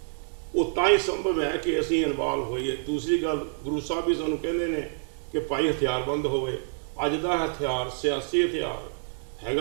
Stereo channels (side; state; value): left; silent; digital silence